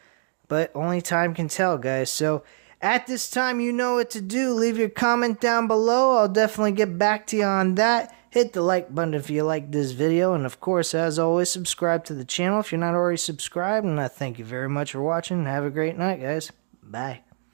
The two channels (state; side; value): silent; left; digital silence